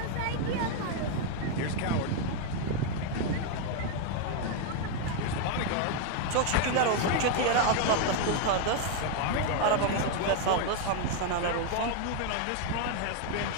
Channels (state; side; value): different; both; correlation 0.01